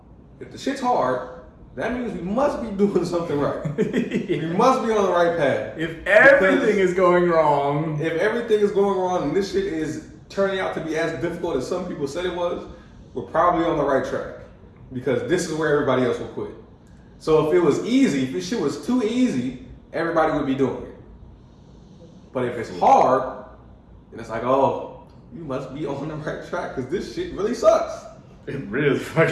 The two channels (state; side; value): identical; both; correlation 1.00